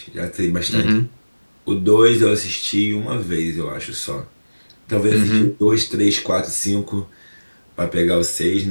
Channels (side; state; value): both; inverted; correlation -1.00